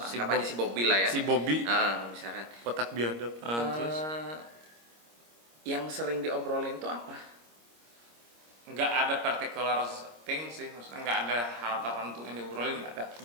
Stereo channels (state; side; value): late; left; 26 ms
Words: anggap aja si Bobby lah ya. Si Bobby. Misalkan. Kotak biadab. Terus yang sering diobrolin tuh apa? nggak ada particular thing sih, maksudnya nggak ada hal tertentu yang diobrolin, nggak ada.